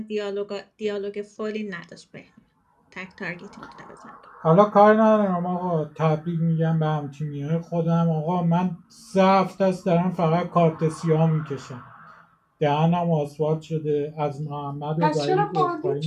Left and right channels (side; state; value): both; identical; correlation 1.00